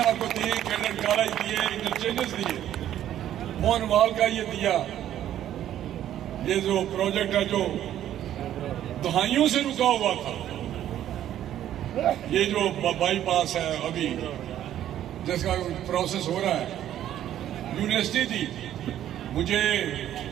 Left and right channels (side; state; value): left; quieter; 11.6 dB